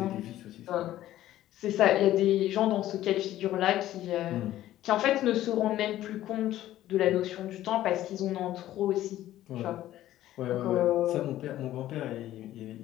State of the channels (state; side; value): quieter; right; 13.7 dB